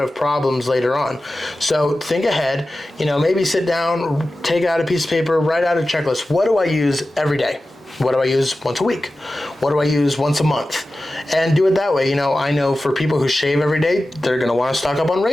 problems later on. So think ahead, maybe sit down, take out a piece of paper, write out a checklist. What do I use every day? What do I use once a week? What do I use once a month? And do it that way. I know for people who shave every day, they're going to want to stock up on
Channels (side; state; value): both; normal; correlation 0.94